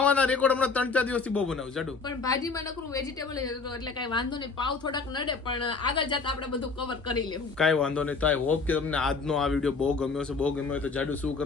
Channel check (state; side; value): quieter; right; 4.5 dB